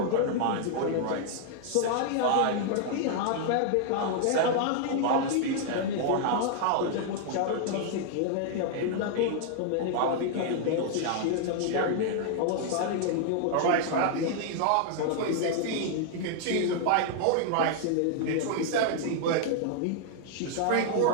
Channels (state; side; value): different; both; correlation -0.01